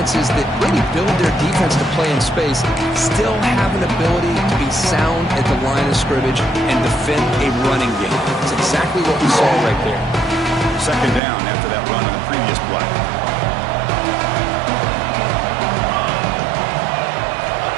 that really build their defense to play in space still have an ability to be sound at the line of scrimmage and defend a running game. It's exactly what we saw right there. Second down after that run on the previous play.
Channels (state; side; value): drops out; left; at 11.2 s